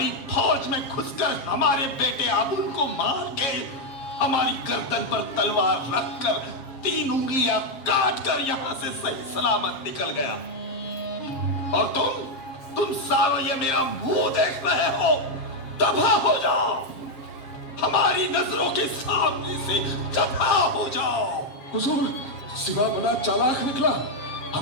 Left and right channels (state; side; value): late; right; 7.5 ms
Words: फौज में घुसकर हमारे बेटे अबुल को मार के हमारी गर्दन पर तलवार रखकर 3 उंगलियां काट कर यहां से सही सलामत निकल गया। और तुम सारों ये मेरा मुंह देख रहे हो। दफा हो जाओ, हमारी नजरों के सामने से दफा हो जाओ। हुजूर, शिवा बड़ा चालाक निकला।